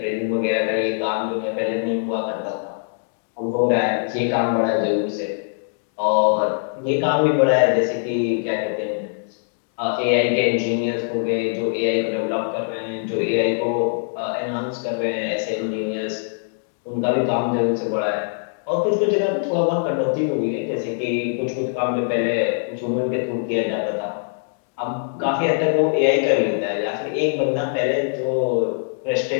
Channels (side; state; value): right; silent; digital silence